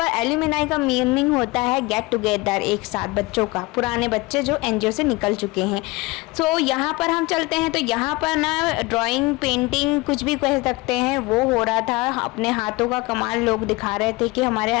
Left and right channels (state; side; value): quieter; right; 22.8 dB